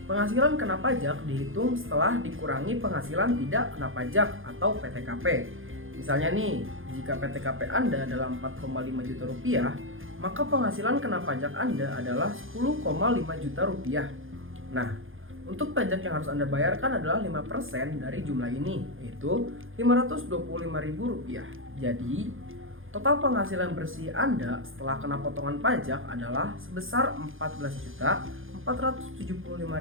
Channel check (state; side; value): late; left; 0.59 ms